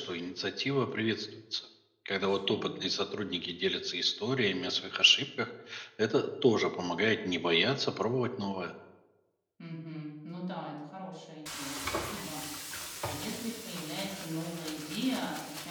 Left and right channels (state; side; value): identical; both; correlation 1.00